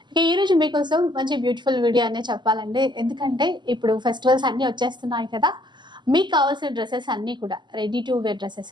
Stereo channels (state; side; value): late; left; 0.22 ms